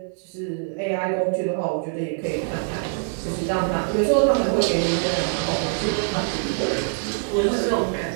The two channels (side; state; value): left; silent; 62 dB below the other